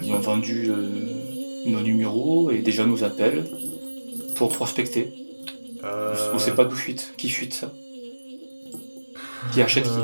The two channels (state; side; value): inverted; both; correlation -1.00